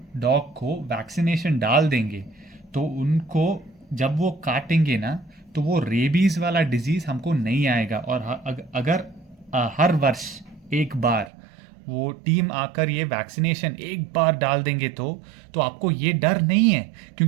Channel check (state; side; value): drops out; left; at 11.3 s